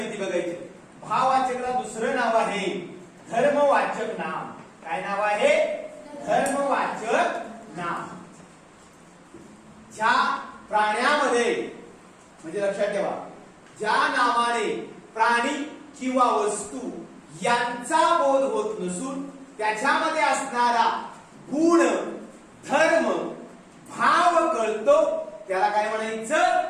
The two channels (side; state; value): both; identical; correlation 1.00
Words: बघायची. भाववाचकला दुसरं नाव आहे धर्मवाचक नाम. काय नाव आहे? धर्मवाचक नाम. ज्या प्राण्यामध्ये म्हणजे लक्षात ठेवा, ज्या नावाने प्राणी किंवा वस्तू यांचा बोध होत नसून त्याच्यामध्ये असणारा गुण धर्म भाव कळतो त्याला काय म्हणायचं?